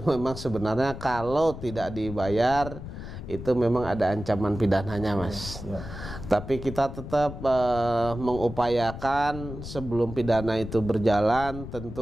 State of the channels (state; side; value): noise; left; rumble, 10 dB below the sound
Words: memang sebenarnya kalau tidak dibayar itu memang ada ancaman pidananya Mas. Tapi kita tetap mengupayakan sebelum pidana itu berjalan,